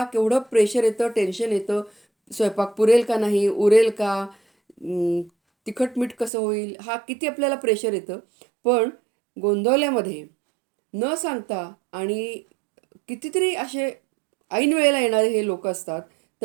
केवढं प्रेशर येतं, टेन्शन येतं. स्वयंपाक पुरेल का नाही, उरेल का, तिखट मीठ कसं होईल, हा किती आपल्याला प्रेशर येतं. पण गोंदवल्यामध्ये न सांगता आणि कितीतरी असे ऐन वेळेला येणारे हे लोक असतात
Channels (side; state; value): left; drops out; at 6.3 s